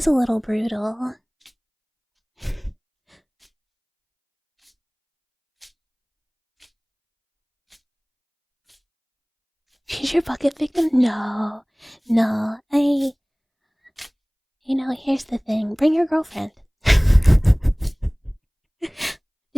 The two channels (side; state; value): both; identical; correlation 1.00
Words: a little brutal. She's your bucket victim? No. You know, here's the thing. Bring your girlfriend.